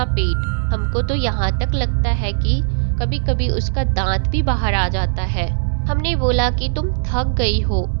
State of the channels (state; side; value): silent; left; digital silence